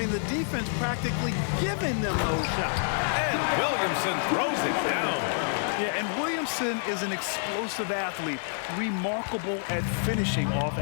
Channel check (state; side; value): silent; right; 59 dB below the other